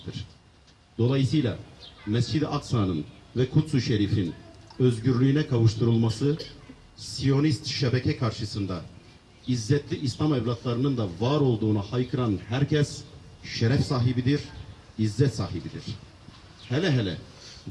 Dolayısıyla Mescid-i Aksa'nın ve Kuds-ü Şerif'in özgürlüğüne kavuşturulması, Siyonist şebeke karşısında İzzetli İslam evlatlarının da var olduğunu haykıran herkes şeref sahibidir, izzet sahibidir. Hele hele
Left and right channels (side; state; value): both; identical; correlation 1.00